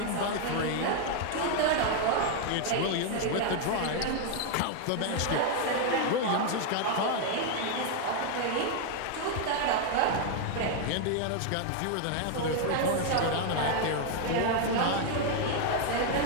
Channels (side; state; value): both; different; correlation 0.00